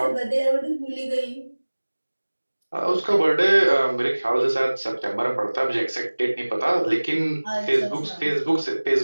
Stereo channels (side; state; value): both; inverted; correlation -1.00